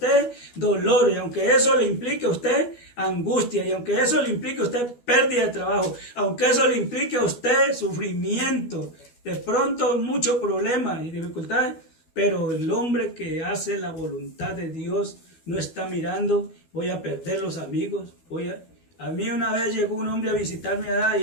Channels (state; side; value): late; right; 12 ms